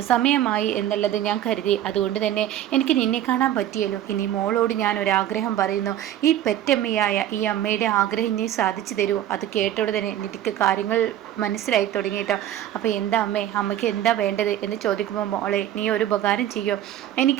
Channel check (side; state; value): left; quieter; 11.8 dB